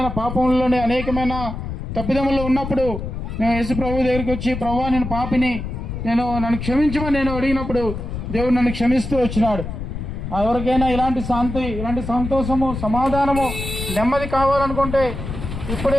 పాపంలోనే, అనేకమైన తప్పిదముల్లో ఉన్నప్పుడు మేము యేసు ప్రభు దగ్గరికి వచ్చి, ప్రభువా నేను పాపిని, నన్ను క్షమించమని నేను అడిగినప్పుడు దేవుడు నన్ను క్షమిస్తూ వచ్చినాడు. ఎవరికైనా ఇలాంటి శాంతి, ఇలాంటి సంతోషము, సమాధానము, నెమ్మది కావాలనుకుంటే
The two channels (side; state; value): left; noise; rumble, 6 dB below the sound